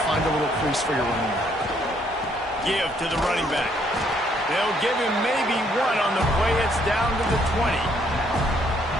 find a little crease for your running back. Give to the running back. They'll give him maybe 1 on the play. It's down to the 20.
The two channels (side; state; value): both; normal; correlation 0.68